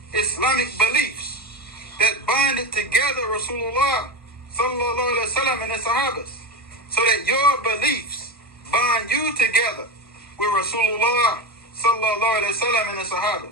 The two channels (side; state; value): both; normal; correlation 0.19